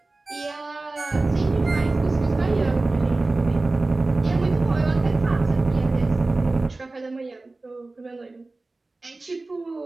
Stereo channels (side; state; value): left; quieter; 3.2 dB